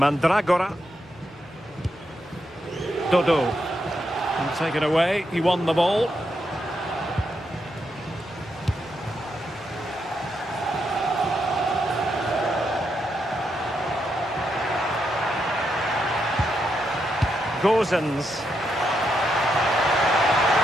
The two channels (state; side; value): normal; both; correlation 0.81